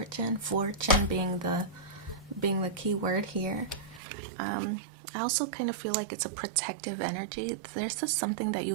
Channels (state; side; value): drops out; left; at 4.0 s